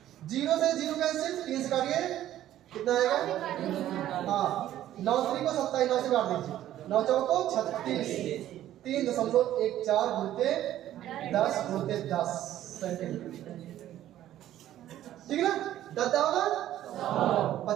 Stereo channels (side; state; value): left; quieter; 12.7 dB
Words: 0 से 0 कैंसिल, 3 से काटिए कितना आएगा? हाँ 9 3 को 27 9 से काट दीजिए, 9 चौको 36 3.14 गुणते 10 गुणते 10 सेंटीमीटर। ठीक है ना? 10 होगा